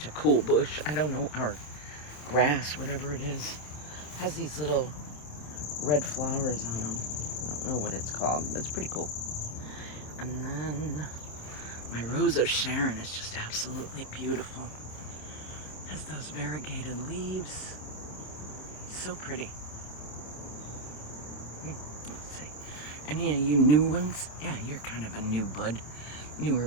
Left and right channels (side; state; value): right; late; 27 ms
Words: a cool bush. I don't know, our grass, whatever it is, has these little red flowers on them. I don't know what it's called, but it's pretty cool. And then my Rose of Sharon is just absolutely beautiful. Has those variegated leaves. So pretty. Let's see. Any of you new ones? Yeah, you're kind of a new bud. Newer